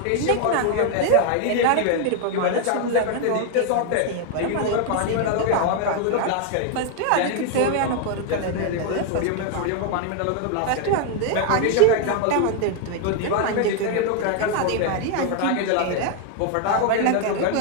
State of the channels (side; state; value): both; different; correlation 0.01